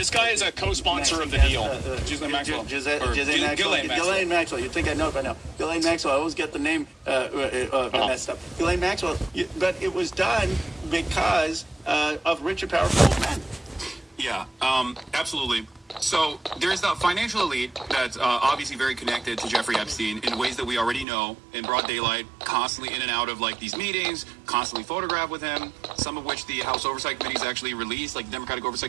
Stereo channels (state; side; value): drops out; left; at 21.1 s